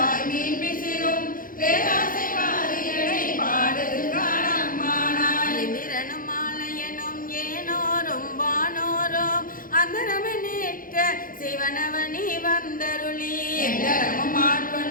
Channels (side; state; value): right; late; 0.40 ms